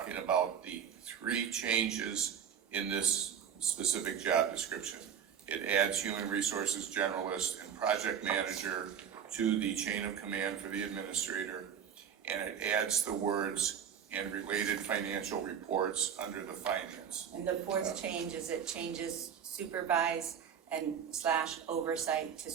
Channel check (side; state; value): left; quieter; 8.1 dB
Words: about the three changes in this specific job description. It adds human resources generalist and project manager to the chain of command for the administrator, and it adds the words and related financial reports under the finance. And the fourth change is it changes supervise and / oversight to